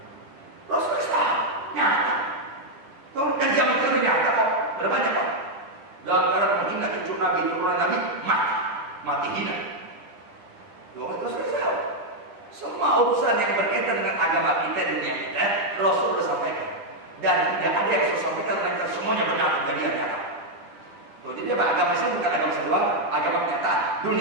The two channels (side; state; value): left; late; 10 ms